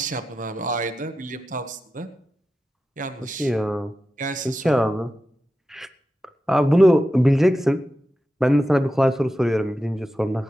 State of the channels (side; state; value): both; normal; correlation 0.91